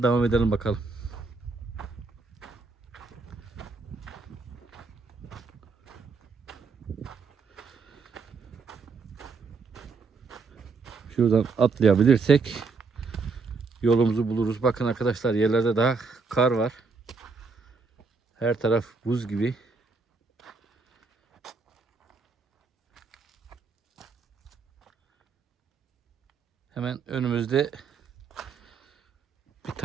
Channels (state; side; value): quieter; left; 4.5 dB